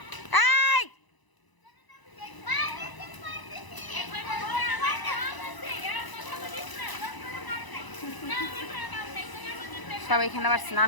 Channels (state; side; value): late; right; 1.0 ms